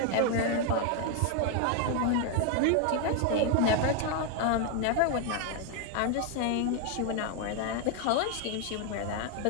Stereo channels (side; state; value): both; different; correlation 0.00